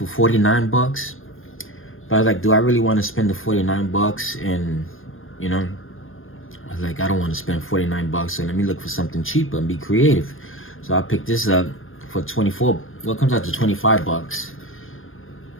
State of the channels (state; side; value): late; right; 0.59 ms